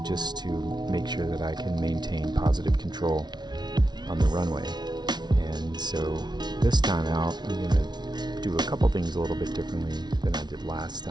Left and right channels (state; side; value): late; left; 0.20 ms